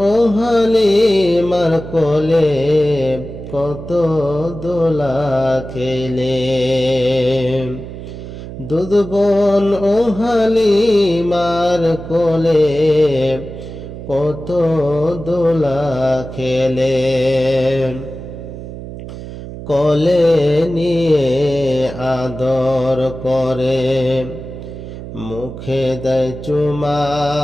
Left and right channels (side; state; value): right; noise; hum, 11 dB below the sound